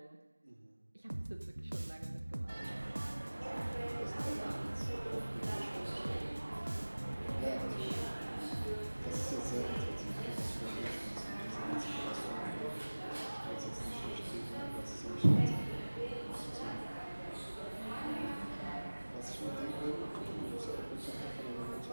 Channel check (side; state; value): both; inverted; correlation -1.00